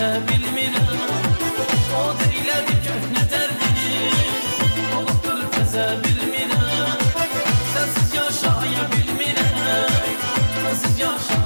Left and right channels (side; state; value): both; inverted; correlation -1.00